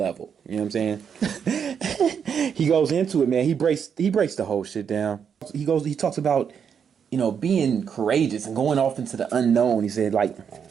You know what I'm saying? He goes into it, man. He breaks the whole shit down. He talks about, being courageous and going off into the unknown. He said, like,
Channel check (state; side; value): quieter; left; 7.3 dB